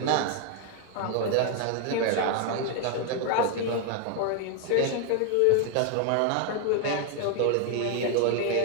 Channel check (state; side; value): different; both; correlation 0.00